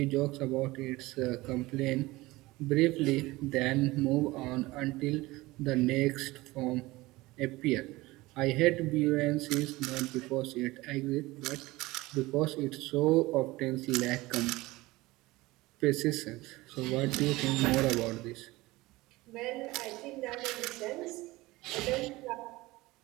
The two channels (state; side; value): quieter; left; 20.2 dB